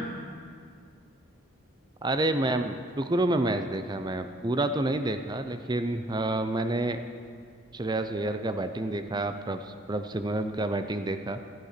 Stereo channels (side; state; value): both; normal; correlation 0.61